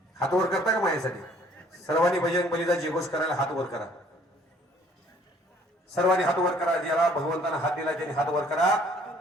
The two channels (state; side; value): normal; both; correlation 0.59